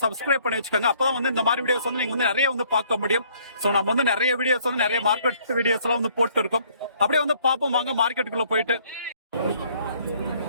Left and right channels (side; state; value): both; inverted; correlation -0.62